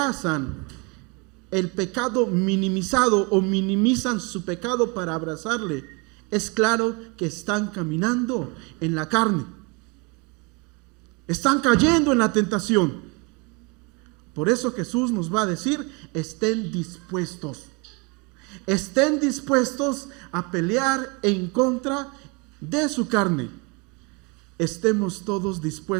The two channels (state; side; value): quieter; left; 30.3 dB